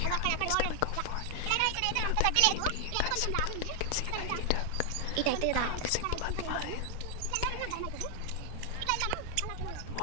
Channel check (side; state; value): both; different; correlation 0.00